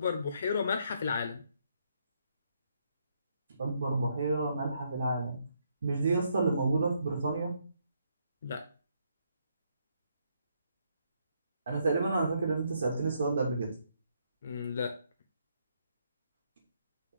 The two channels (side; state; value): both; inverted; correlation -0.74